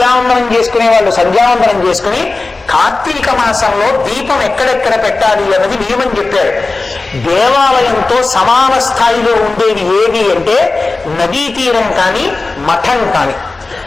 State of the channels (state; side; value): quieter; right; 3.5 dB